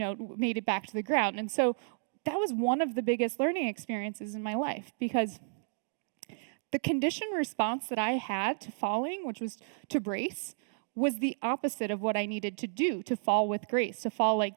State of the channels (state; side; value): silent; left; digital silence